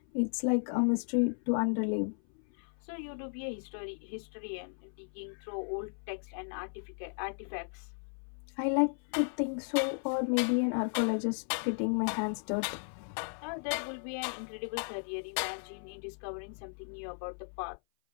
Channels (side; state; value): right; silent; 54 dB below the other